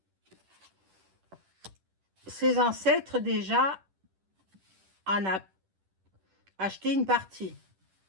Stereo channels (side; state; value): left; late; 10 ms